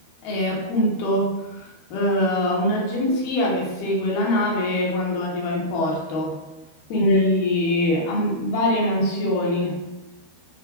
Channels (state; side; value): late; right; 12 ms